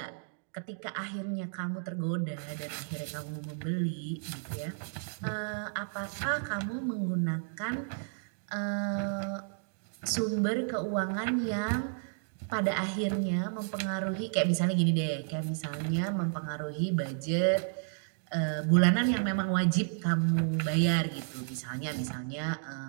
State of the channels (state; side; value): silent; left; digital silence